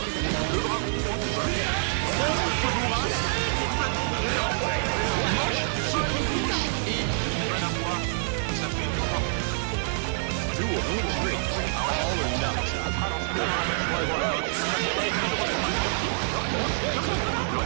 Le dragon hein, qui passe. Ce bourrage. Complètement bourré. Hein. Il manque une touche et il va l'avoir. Et ça fait un partout. Long round, hein. Ah ouais, là c'est, on sent que c'est neutral, hein, ça va être un match. Ouais, oh là là, c'est ça, je sais pas, qui est malheureusement pas converti, alors qu'il était counter, il aurait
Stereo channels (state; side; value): silent; left; digital silence